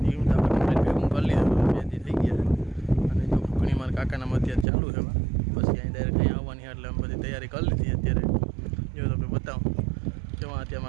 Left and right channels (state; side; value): drops out; left; at 4.7 s